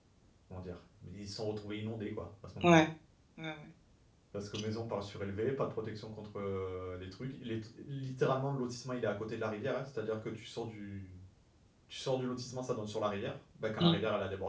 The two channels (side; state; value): both; identical; correlation 1.00